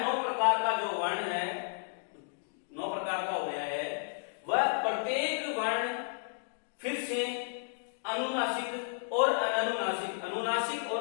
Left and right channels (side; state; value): right; silent; digital silence